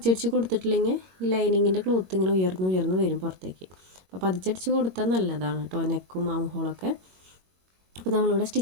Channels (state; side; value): late; left; 21 ms